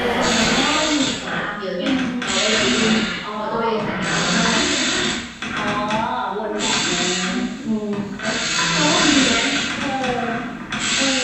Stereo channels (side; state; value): both; identical; correlation 1.00